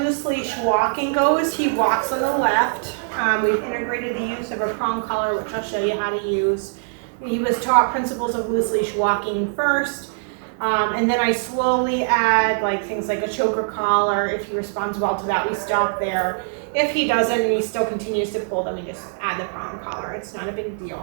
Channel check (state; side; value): silent; left; digital silence